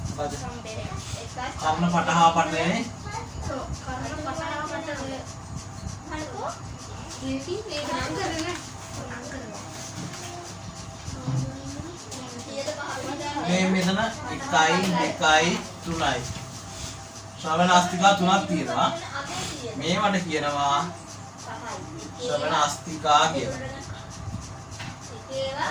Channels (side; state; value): both; identical; correlation 1.00